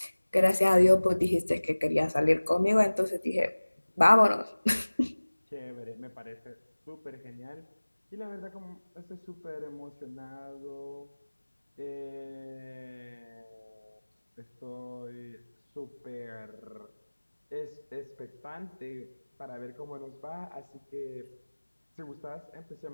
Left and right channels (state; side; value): inverted; both; correlation -1.00